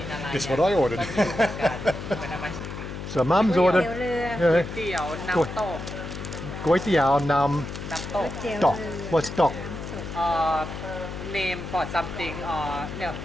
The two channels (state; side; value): noise; left; hum, 8 dB below the sound